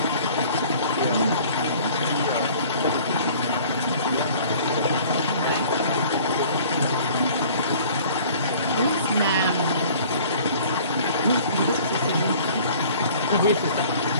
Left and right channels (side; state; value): both; inverted; correlation -0.50